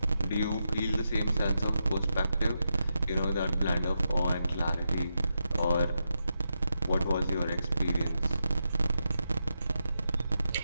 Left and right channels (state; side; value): inverted; both; correlation -0.86